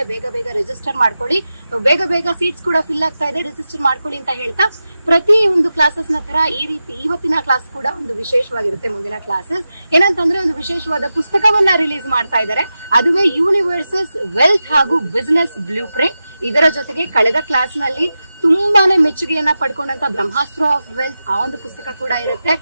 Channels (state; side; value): inverted; both; correlation -0.92